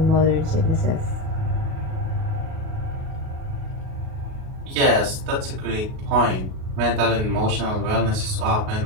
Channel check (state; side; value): late; left; 37 ms